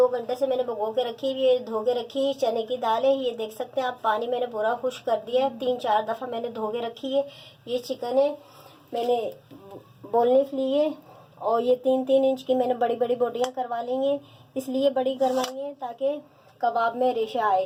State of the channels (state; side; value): identical; both; correlation 1.00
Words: घंटे से मैंने भिगो के रखी हुई है, धो के रखी चने की दाल है। ये देख सकते हैं आप, पानी मैंने पूरा खुश कर दिया है, 3-4 दफ़ा मैंने धो के रखी है। ये चिकन है, मैंने बोनलेस ली है और ये 3-3 इंच की मैंने बड़ी बड़ी बोटियाँ करवा ली हैं। इसलिए बड़ी करवाई हैं ताकि कबाब में रेशा आए।